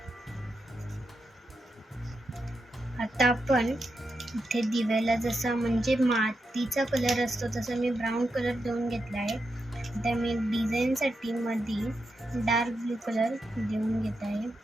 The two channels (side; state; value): both; normal; correlation 0.86